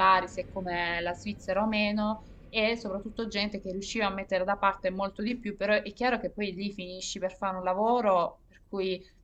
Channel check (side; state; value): both; identical; correlation 1.00